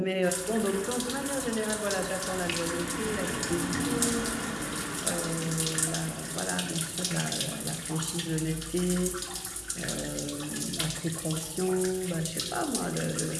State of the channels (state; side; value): identical; both; correlation 1.00